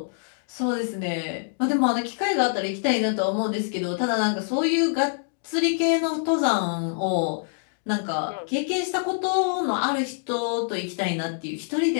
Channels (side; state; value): right; silent; digital silence